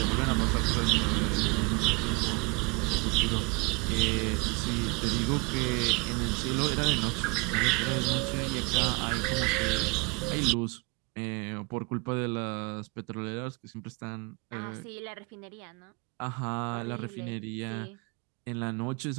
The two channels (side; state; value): left; quieter; 29.1 dB